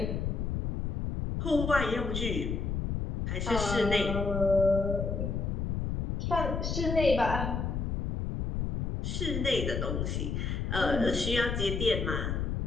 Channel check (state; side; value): noise; left; rumble, 1 dB below the sound